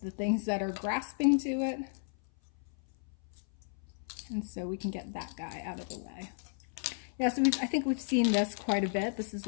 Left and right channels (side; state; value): right; silent; 55 dB below the other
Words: the things that are grasping to it. And so we can get that guy out of the way. Yeah, so I think we've seen this quite a bit. This is